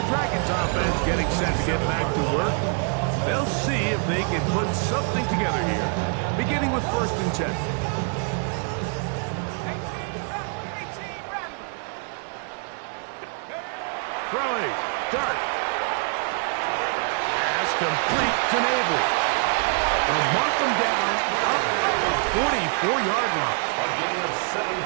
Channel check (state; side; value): quieter; left; 39.6 dB